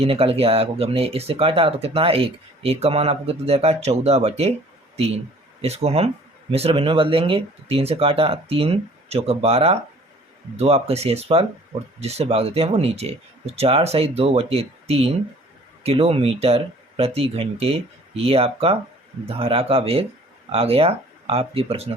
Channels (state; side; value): normal; both; correlation 0.52